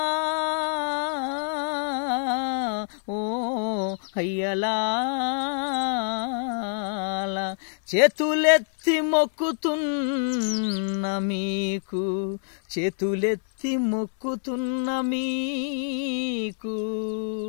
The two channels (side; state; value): right; silent; 61 dB below the other